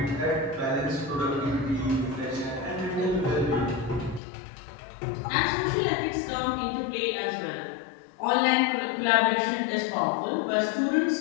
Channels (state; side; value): drops out; right; at 4.2 s